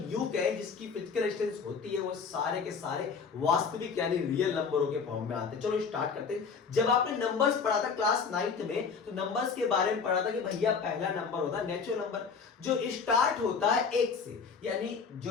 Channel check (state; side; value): quieter; right; 5.7 dB